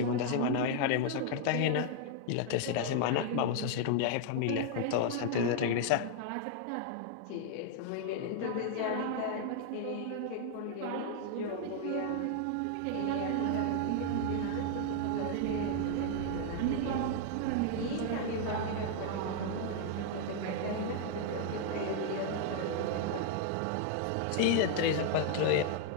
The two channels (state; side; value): different; both; correlation 0.00